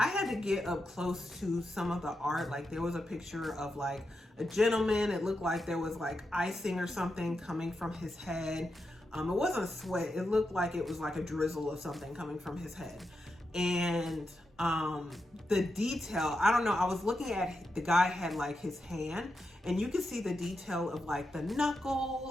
had to get up close to some of the art. Like there was a picture of like a gentleman. It looked like there was like icing or something coming from his head. It wasn't sweat. It looked like it was like a drizzle of something coming from his head. And the detail, I don't know, I was looking at, the guy had like his hand and you could see the detail of like the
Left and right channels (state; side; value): normal; both; correlation 0.87